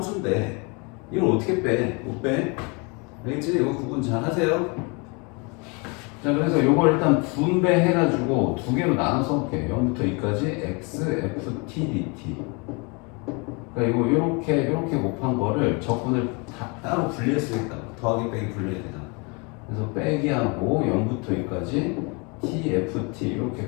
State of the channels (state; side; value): quieter; right; 31.0 dB